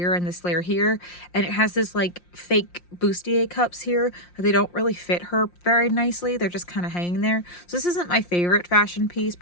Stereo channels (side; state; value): right; late; 5.7 ms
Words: and this layer here, and it has this like fake bustier cups here. They don't really fit her very nicely. They're just kind of hanging there. So this isn't my favorite fashion piece